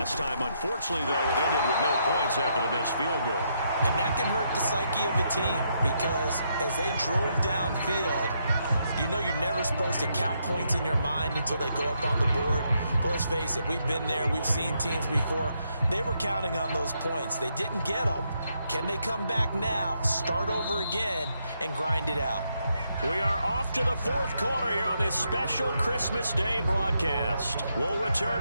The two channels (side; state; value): both; inverted; correlation -0.78